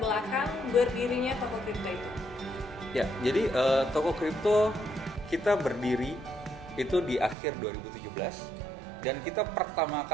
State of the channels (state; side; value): drops out; left; at 7.4 s